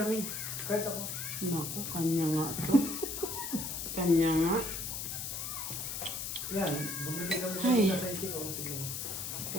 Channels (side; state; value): left; noise; hiss, 4 dB below the sound